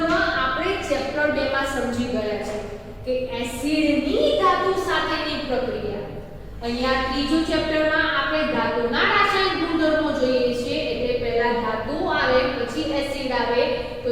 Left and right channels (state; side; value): identical; both; correlation 1.00